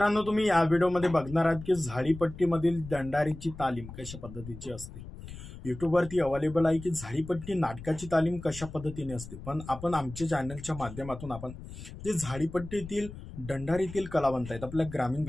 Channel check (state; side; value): noise; left; rumble, 13 dB below the sound